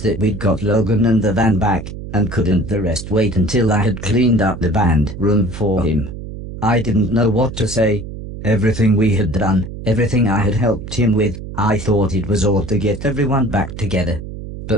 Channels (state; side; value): noise; right; hum, 10 dB below the sound